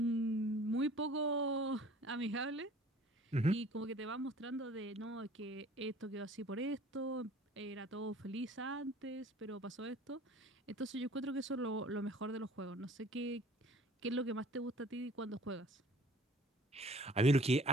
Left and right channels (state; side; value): normal; both; correlation 0.51